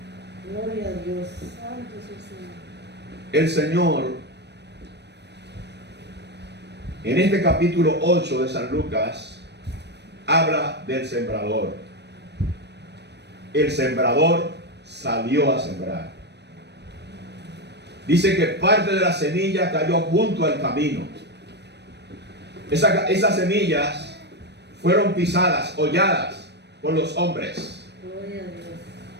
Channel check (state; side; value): late; left; 0.50 ms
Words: Gloria a Dios. Santo es el Señor. El Señor, en este capítulo 8 de San Lucas, habla del sembrador. El sembrador salió a sembrar. Dice que parte de la semilla cayó junto al camino. Esas semillas fueron pisadas, holladas por los hombres. Gloria a Dios.